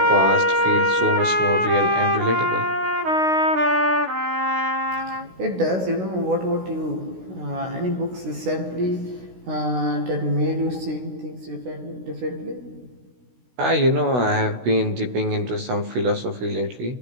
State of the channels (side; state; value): left; late; 16 ms